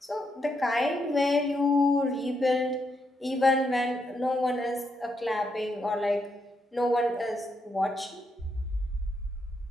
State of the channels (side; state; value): both; normal; correlation 0.80